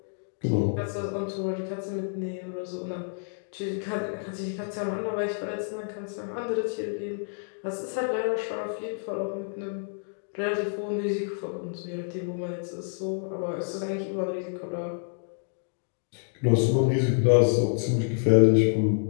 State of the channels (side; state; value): right; silent; digital silence